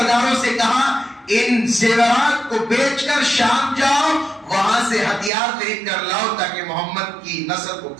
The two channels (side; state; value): left; drops out; at 5.3 s